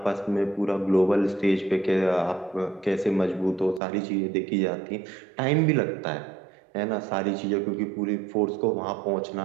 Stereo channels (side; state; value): left; drops out; at 3.8 s